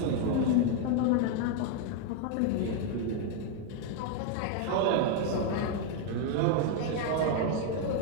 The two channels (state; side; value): different; both; correlation 0.00